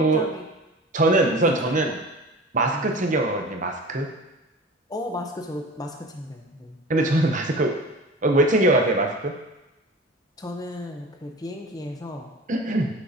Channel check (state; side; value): normal; both; correlation 0.37